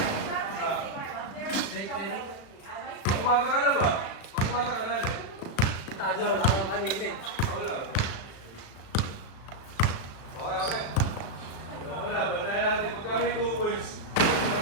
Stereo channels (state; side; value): late; right; 36 ms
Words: Umaga ka na ba? Umaga ka na, ano? Tadyo, wala kang kanina eh. Wala. Okay. Wala, bantayan natin. Pagka may 2 points,